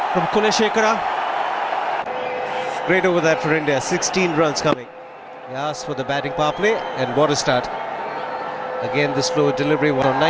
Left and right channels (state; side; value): identical; both; correlation 1.00